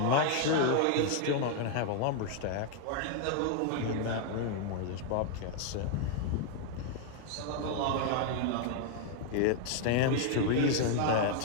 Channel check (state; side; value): different; both; correlation 0.00